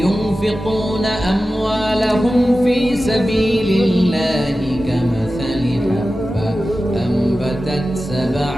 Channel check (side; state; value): both; normal; correlation 0.94